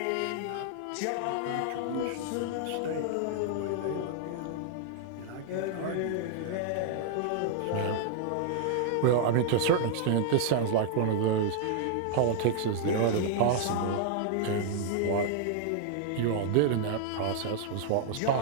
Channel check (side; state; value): both; different; correlation -0.01